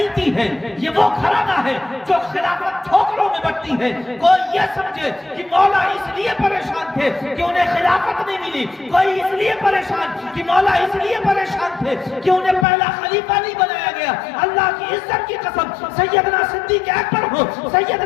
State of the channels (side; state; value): right; drops out; at 12.7 s